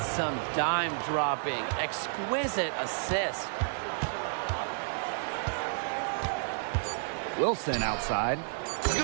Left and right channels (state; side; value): silent; left; digital silence